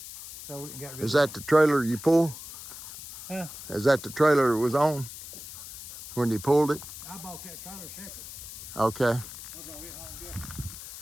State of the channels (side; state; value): left; noise; hiss, 12 dB below the sound